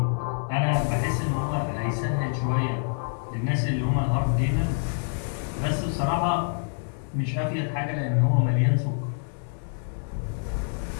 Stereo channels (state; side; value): silent; right; digital silence